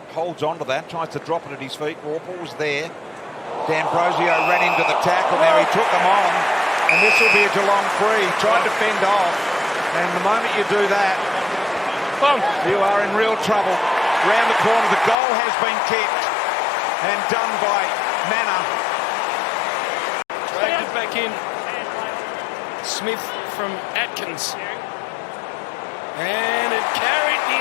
holds on to that, tries to drop it at his feet. Warple was there. D'Ambrosio ran into the tackle. Now he took them on, and this will be a Geelong free. Tried to fend off, and the moment you do that, you are in real trouble. Round the corner, the goal has been kicked and done by Manor. Dragged it back in. Smith from Atkins. And it carried the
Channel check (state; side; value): drops out; right; at 15.2 s